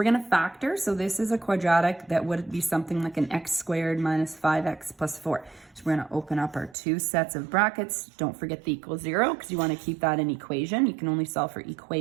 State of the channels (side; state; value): left; drops out; at 6.8 s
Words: going to factor. So this is a quadratic that would be something like an x squared minus 5x plus 4. So we're going to open up our two sets of brackets. Don't forget the equals 0 because you want to keep that in equation. You can only solve for